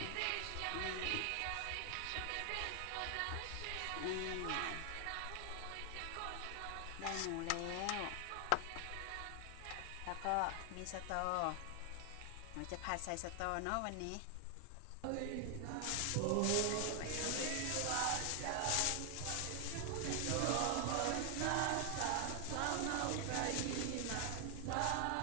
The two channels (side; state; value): both; different; correlation 0.00